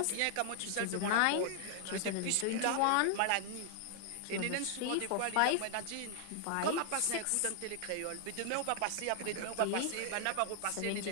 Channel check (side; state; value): both; different; correlation 0.00